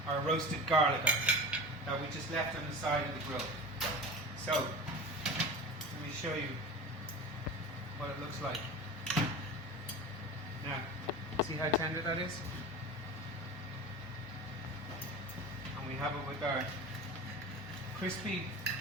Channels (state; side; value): normal; both; correlation 0.32